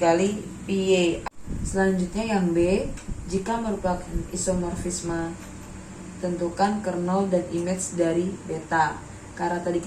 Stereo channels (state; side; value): identical; both; correlation 1.00